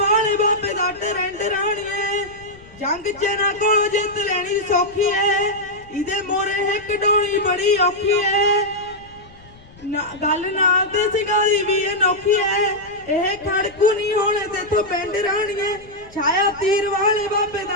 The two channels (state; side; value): noise; left; rumble, 23 dB below the sound